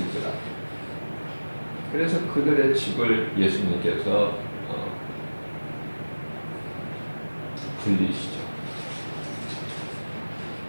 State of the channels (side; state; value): both; inverted; correlation -1.00